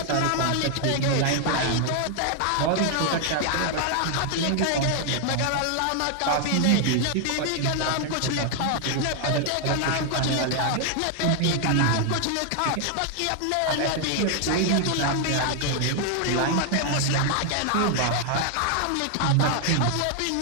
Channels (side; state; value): both; different; correlation 0.00